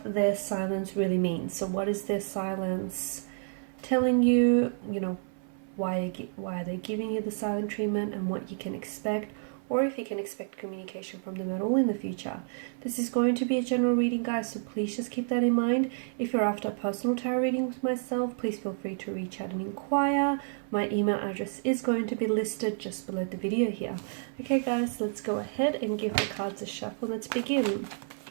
their silence really means. So what is their silence telling you, why are they giving you the silent treatment and what you can expect, or if you can expect communication from them at all in the future. This is going to be a general reading, guys, so please just keep that in mind. If you're after a personal tarot reading with myself, please feel free to reach out and inquire. My email address is going to be listed just below the video here. Okay, guys, let's go ahead and give the cards a shuffle. Let's begin.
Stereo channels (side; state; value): left; silent; 58 dB below the other